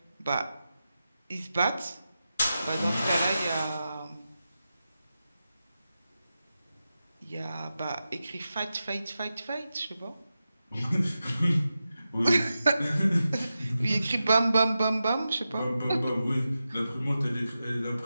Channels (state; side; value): inverted; both; correlation -0.91